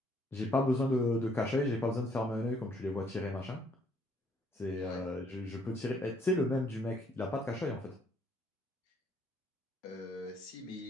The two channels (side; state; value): both; normal; correlation 0.66